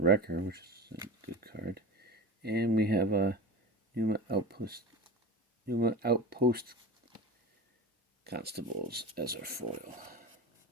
which is a good card. And we have a Numa Outpost Constables as our foil.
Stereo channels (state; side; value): normal; both; correlation 0.29